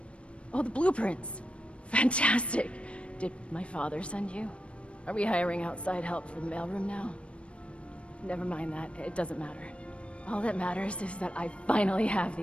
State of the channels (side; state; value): right; late; 0.060 ms